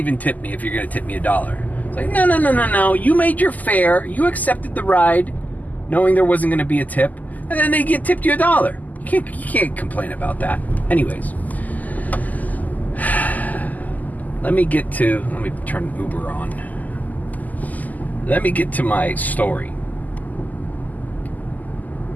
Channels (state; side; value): late; right; 0.080 ms